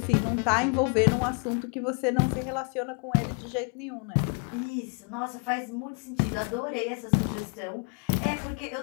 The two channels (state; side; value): quieter; right; 37.9 dB